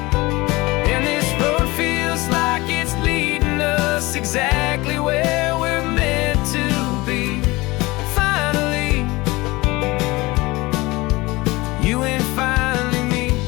And this road feels like it's leading us exactly where we're meant to be. Finally, you and finally me.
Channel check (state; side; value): quieter; right; 21.8 dB